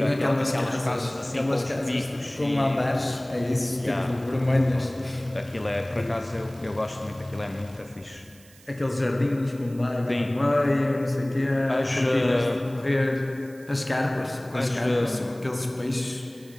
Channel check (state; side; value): noise; right; hiss, 25 dB below the sound